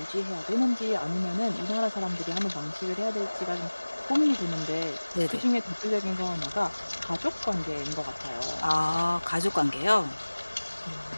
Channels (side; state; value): both; inverted; correlation -1.00